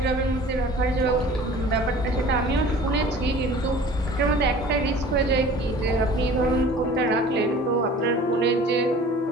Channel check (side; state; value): both; normal; correlation 0.45